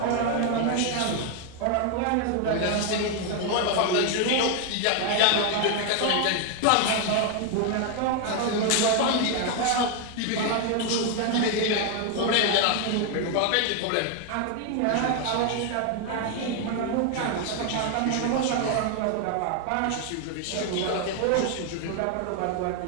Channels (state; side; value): different; both; correlation 0.01